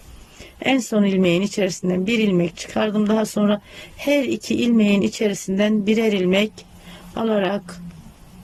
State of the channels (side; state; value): both; identical; correlation 1.00